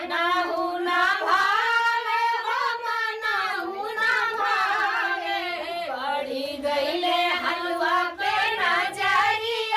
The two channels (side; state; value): both; identical; correlation 1.00